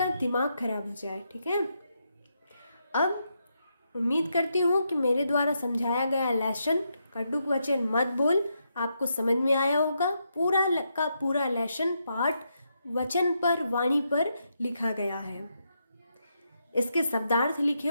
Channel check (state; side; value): inverted; both; correlation -0.81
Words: दिमाग खराब हो जाए। ठीक है, अब उम्मीद करती हूँ कि मेरे द्वारा समझाया गया लेसन कटुक वचन मत बोल आपको समझ में आया होगा। पूरा का पूरा लेसन पाठ वचन पर, वाणी पर लिखा गया है, इसके शब्दार्थ लिखे